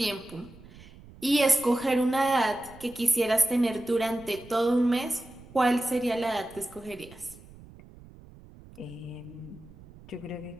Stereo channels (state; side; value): noise; right; rumble, 21 dB below the sound